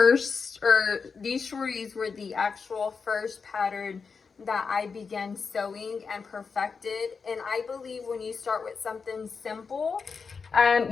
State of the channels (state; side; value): quieter; right; 5.3 dB